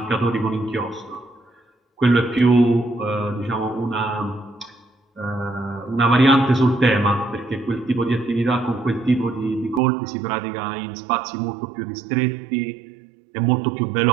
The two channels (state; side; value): drops out; left; at 9.8 s